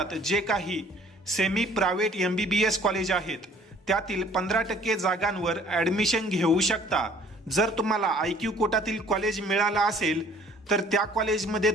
जे काही सेमी प्रायव्हेट MBBS कॉलेज आहेत त्यातील 15% जागांवर ॲडमिशन घेऊ शकता। जर तुम्हाला IQ कोटातील कॉलेज मिळाला असेल तर त्या कॉलेजमध्ये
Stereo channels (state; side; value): normal; both; correlation 0.55